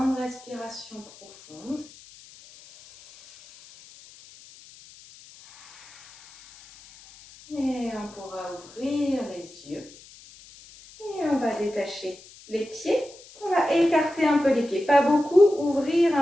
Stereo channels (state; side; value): noise; left; hiss, 22 dB below the sound